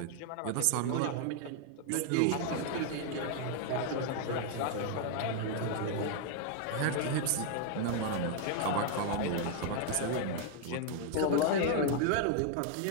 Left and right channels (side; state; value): both; different; correlation 0.00